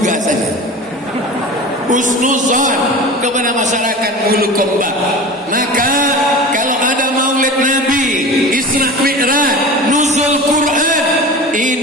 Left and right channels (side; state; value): both; normal; correlation 0.34